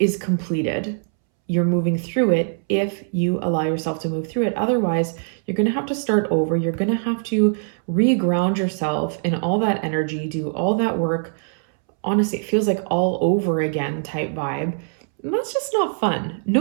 completed. You're moving through it if you allow yourself to move through it. Otherwise, you're going to have to start over. You're going to have to reground yourself in all that energy, do all that work. Honestly, it feels like all over again type vibe. And that's just not fun.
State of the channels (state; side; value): silent; left; 64 dB below the other